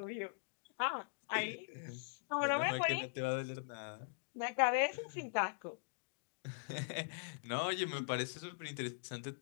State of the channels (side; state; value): right; silent; digital silence